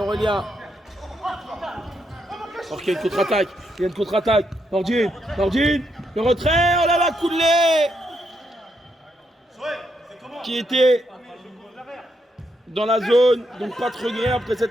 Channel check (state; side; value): normal; both; correlation 0.79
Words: Alors qu'il y a une contre-attaque. Nordine. Le retrait. Oh là là, Koulé. Qui était dans la zone. Donc pas de regret après